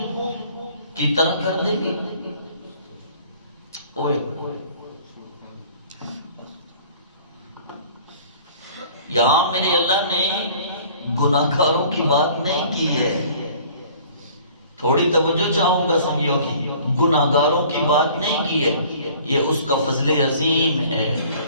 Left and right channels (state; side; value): inverted; both; correlation -0.51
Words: کی طرح کر دیں گے؟ یہاں میرے اللہ نے گناہگاروں کی بات نہیں کی ہے، تھوڑی توجہ چاہوں گا سمجھو کی، گناہگاروں کی بات نہیں کی ہے، یہ اس کا فضل عظیم ہے۔